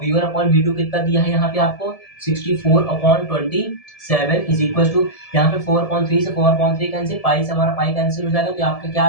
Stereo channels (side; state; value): right; late; 1.7 ms